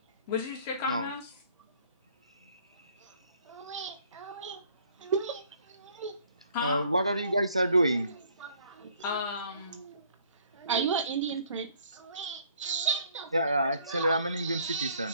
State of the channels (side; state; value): both; inverted; correlation -0.59